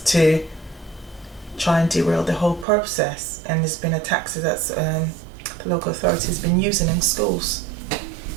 to try and derail the whole process. And there's been a tactic that the local authority has been using in schools.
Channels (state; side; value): drops out; left; at 2.7 s